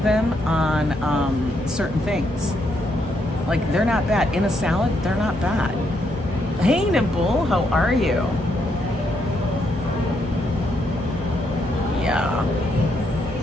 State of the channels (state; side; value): normal; both; correlation 0.76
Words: them on certain things. Like they're not bad. In a salad, they're not bad. Hey Nibble, how are you? Yeah.